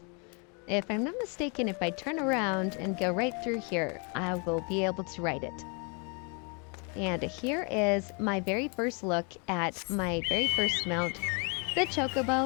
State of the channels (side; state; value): right; quieter; 35.5 dB